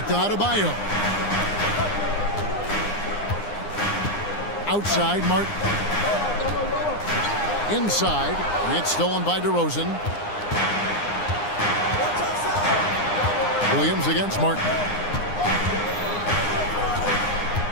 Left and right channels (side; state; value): right; late; 9.8 ms